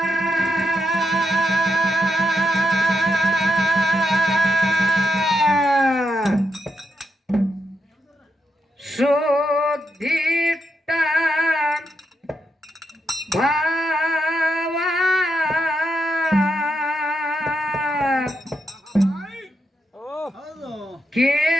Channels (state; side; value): normal; both; correlation 0.83